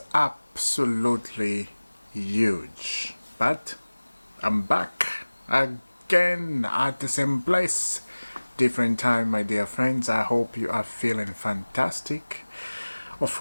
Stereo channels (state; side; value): inverted; both; correlation -1.00